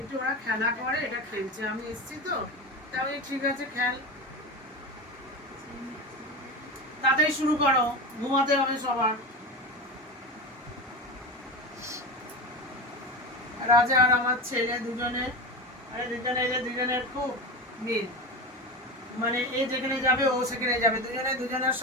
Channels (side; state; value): both; normal; correlation 0.23